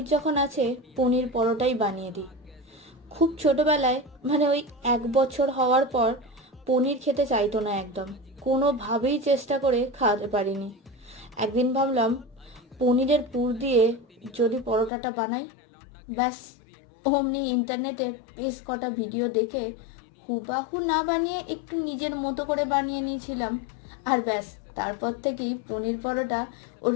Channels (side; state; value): right; drops out; at 14.9 s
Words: যখন আছে পনির পরোটাই বানিয়ে দিই। খুব ছোটবেলায় মানে ওই 1 বছর হওয়ার পর পনির খেতে চাইতো না একদম। কোনোভাবেই চেষ্টা করে খাওয়াতে পারিনি। একদিন ভাবলাম পনিরের পুর দিয়ে যদি পরোটাটা বানাই, ব্যাস। অমনি ইন্টারনেটে বেশ কটা ভিডিও দেখে হুবাহু না বানিয়ে একটু নিজের মতো করে বানিয়ে নিয়েছিলাম। আর ব্যাস, তারপর থেকেই পনির পরোটা ওর